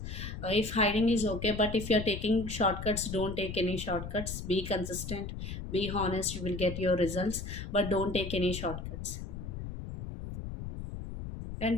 If hiding is okay, but if you're taking shortcuts, don't take any shortcuts. Be consistent, be honest, you will get your results, but don't take any shortcuts. And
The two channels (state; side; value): noise; left; rumble, 7 dB below the sound